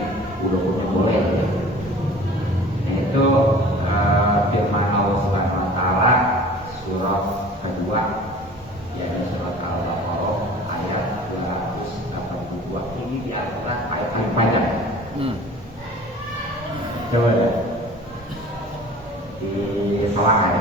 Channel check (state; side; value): normal; both; correlation 0.44